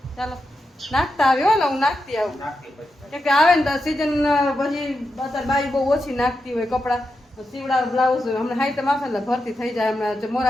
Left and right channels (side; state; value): both; normal; correlation 0.87